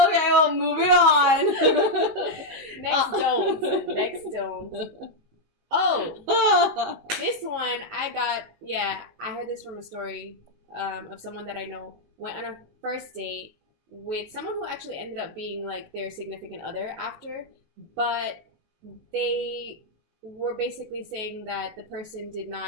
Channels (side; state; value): left; late; 19 ms